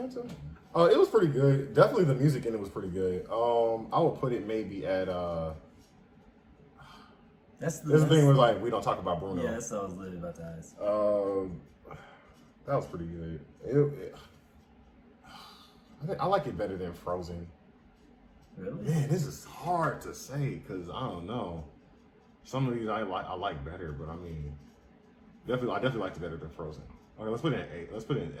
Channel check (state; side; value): identical; both; correlation 1.00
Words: It was pretty good. Definitely the music in it was pretty good. I would put it maybe at That's the thing where like we don't talk about Bruno. Yeah, that's what I was literally about to ask. That was pretty good. I like it better than Frozen. Really? Man, this is hard to say because I don't know. Some of these I like better, but I mean, I definitely liked it better than Frozen. Okay, let's put it in A. Let's put it in